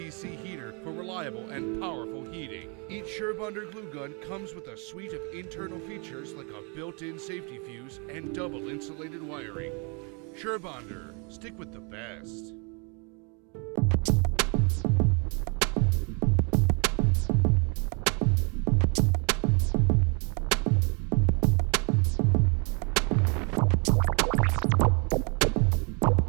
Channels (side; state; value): left; quieter; 34.1 dB